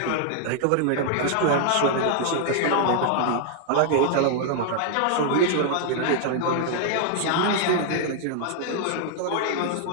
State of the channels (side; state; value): both; different; correlation 0.00